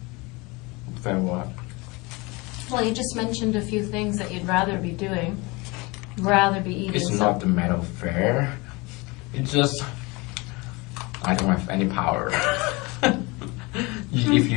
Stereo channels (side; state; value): right; quieter; 25.3 dB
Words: Fair what? Well, you just mentioned a few things that you'd rather be doing, rather be eating. It's not the matter of fair. It's just I don't have any power. If